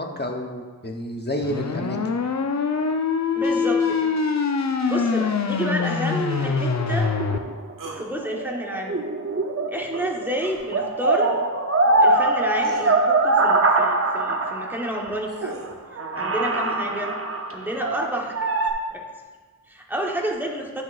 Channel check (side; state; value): both; normal; correlation 0.02